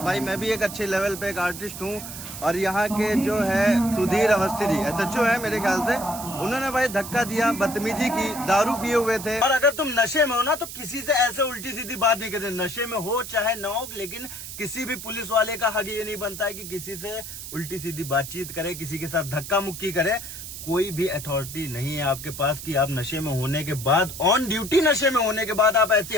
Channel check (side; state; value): right; noise; hiss, 10 dB below the sound